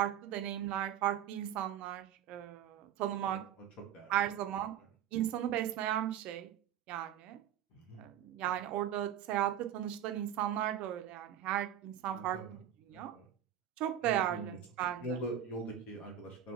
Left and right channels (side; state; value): left; quieter; 10.2 dB